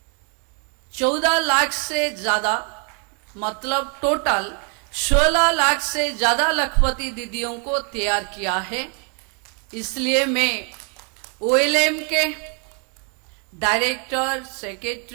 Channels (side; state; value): left; quieter; 38.8 dB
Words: 14 लाख से ज्यादा, मतलब टोटल 16 लाख से ज्यादा लक्ष्यपति दीदियों को तैयार किया है। इसलिए मैं OLM के डायरेक्टर,